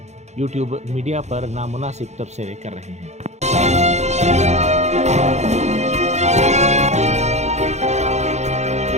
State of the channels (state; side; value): late; left; 0.33 ms